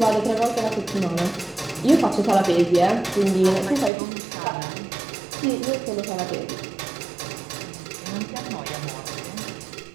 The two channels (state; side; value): drops out; left; at 3.9 s